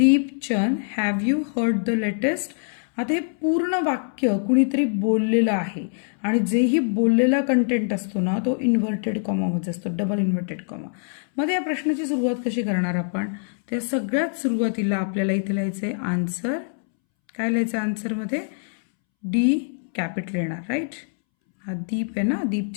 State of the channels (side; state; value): right; silent; 63 dB below the other